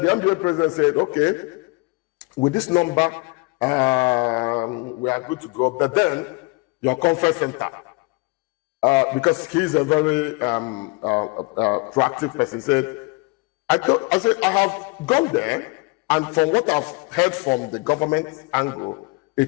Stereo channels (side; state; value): right; quieter; 27.3 dB